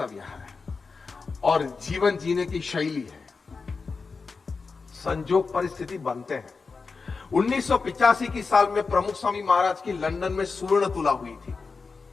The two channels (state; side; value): quieter; right; 4.6 dB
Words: है और जीवन जीने की शैली है। संजोग परिस्थिति बनते हैं। 1985 की साल में प्रमुख स्वामी महाराज की लंदन में स्वर्ण तुला हुई थी।